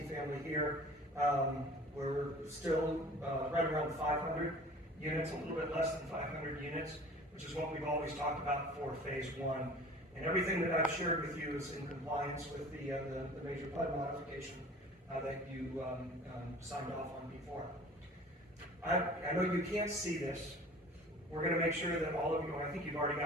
here, We're still right around 500 units, a little bit less than 500 units, which is what we've always talked about for phase one. And everything that I've shared with you is in compliance with the major PUD modification that you signed off on before. I know you can't see this. We're going to make sure that all of you, I think you've already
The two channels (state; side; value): normal; both; correlation 0.44